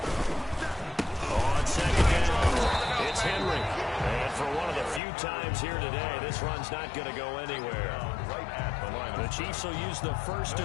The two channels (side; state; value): right; drops out; at 5.0 s